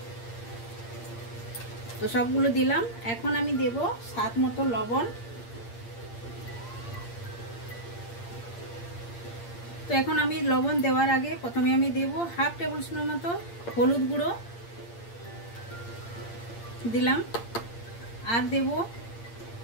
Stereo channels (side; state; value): right; late; 8.7 ms